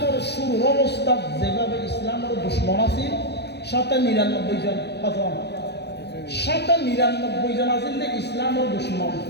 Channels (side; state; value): right; late; 0.49 ms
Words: শুরু অবস্থা যেভাবে ইসলামের দুশ্মন আছে 99 জন, 99 জন আছেন যে ইসলামের দুশ্মন,